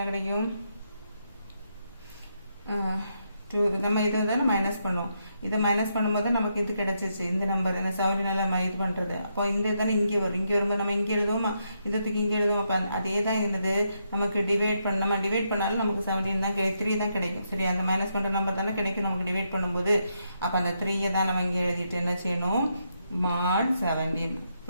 கிடைக்கும்? நம்ம இதை வந்து மைனஸ் பண்ணுவோம். இதை மைனஸ் பண்ணும்போது நமக்கு இது கிடைச்சிச்சு. இந்த நம்பர் என்ன 17ஆல இது பண்ணுறது. அப்போ இந்த தானே இங்கே வரும். இங்கே வரும்போது நம்ம இங்கே எழுதுவோமா? இதுக்கு இங்கே எழுதுவோம். அப்போ அதே தான் என்னது? நமக்கு டிவைட் பண்ண நம்ம டிவைட் பண்ணாலும் நமக்கு 17 தான் 3 தான் கிடைக்கும். சரி? அந்த மைனஸ் பண்ணுற நம்பர் தானே கிடைக்கும் நமக்கு டிவைட் பண்ணும்போது. அப்போ அந்த 3 தான் நம்ம இங்கே எழுதிட்டு என்ன செய்யணும்? mod 17.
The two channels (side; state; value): both; inverted; correlation -0.80